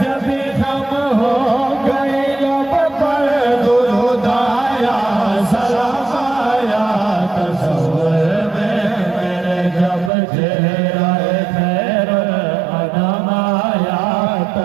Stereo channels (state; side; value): drops out; left; at 10.1 s